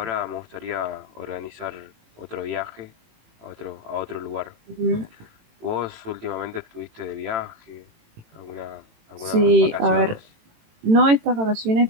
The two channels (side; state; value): left; late; 18 ms